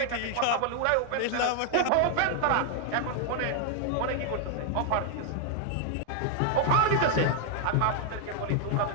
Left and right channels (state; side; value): different; both; correlation 0.00